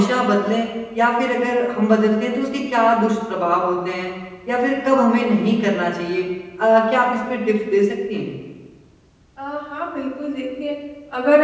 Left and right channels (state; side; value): identical; both; correlation 1.00